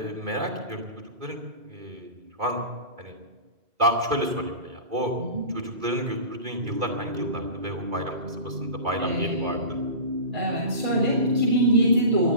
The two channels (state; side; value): late; left; 2.3 ms